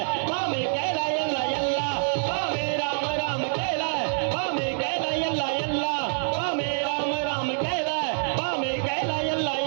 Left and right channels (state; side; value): silent; left; digital silence